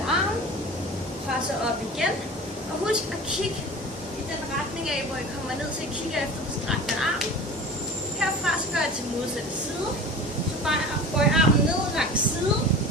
arm. Presser op igen. Og husk at kigge i den retning af, hvor I kommer ned, så I kigger efter den strakte arm. Herfra så gør jeg til modsatte side. Så bøj armen ned langs siden.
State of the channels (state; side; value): normal; both; correlation 0.37